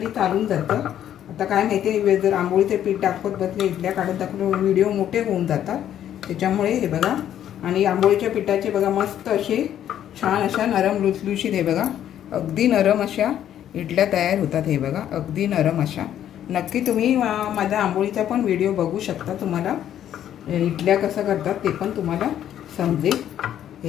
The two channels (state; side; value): quieter; right; 10.7 dB